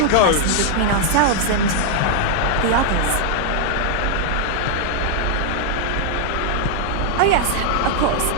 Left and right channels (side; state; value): both; different; correlation 0.00